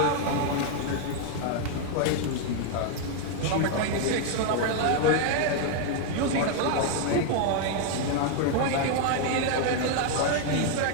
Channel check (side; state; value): both; different; correlation 0.00